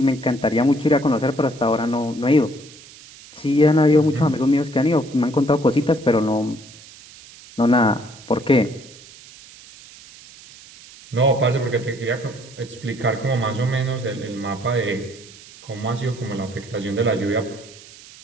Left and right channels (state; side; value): noise; right; hiss, 20 dB below the sound